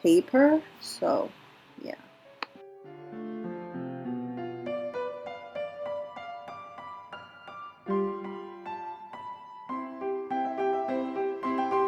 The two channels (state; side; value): identical; both; correlation 1.00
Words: paper. So, yeah.